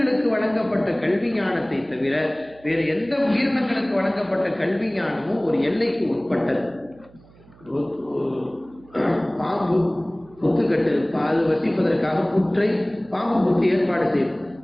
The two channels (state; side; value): noise; right; hum, 26 dB below the sound